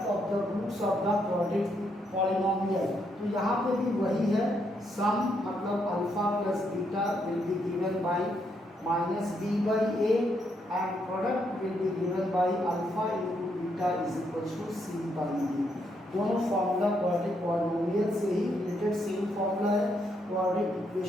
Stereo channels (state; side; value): normal; both; correlation 0.76